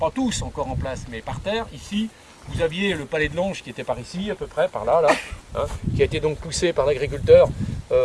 tous encore en place, mais par terre. Ici, vous aviez le palais de l'Ange qui était par ici, à peu près, par là, qui a été donc poussé par l'agriculteur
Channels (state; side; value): identical; both; correlation 1.00